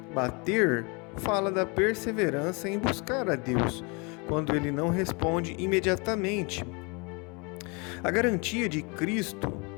Bater fala da perseverança em buscar a Deus, quando Ele não responde imediatamente. A garantia de Cristo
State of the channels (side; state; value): right; quieter; 30.6 dB